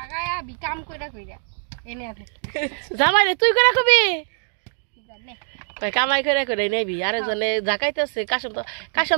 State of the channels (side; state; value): left; silent; digital silence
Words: আবি কাম কইরা এনে আছে জামাই রে তুই করে রাখবি জানে কামাই করে নেবি আরেকজনে জাকাইতেছে।